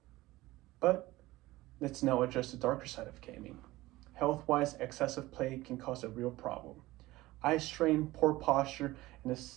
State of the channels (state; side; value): quieter; left; 18.4 dB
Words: But let's now address the darker side of gaming. Health-wise, excessive play can cause a real problem. Eye strain, poor posture, and a